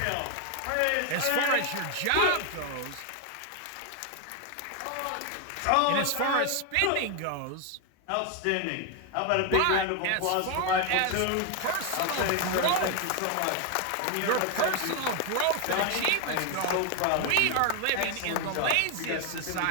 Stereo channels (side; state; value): both; different; correlation 0.01